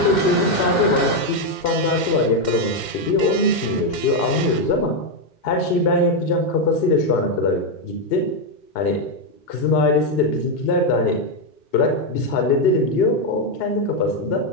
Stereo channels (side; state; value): right; late; 2.1 ms